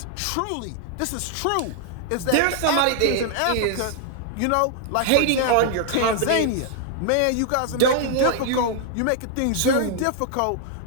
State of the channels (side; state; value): both; different; correlation 0.00